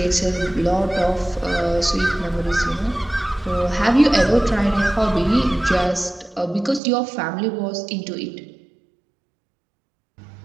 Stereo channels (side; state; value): left; drops out; at 6.8 s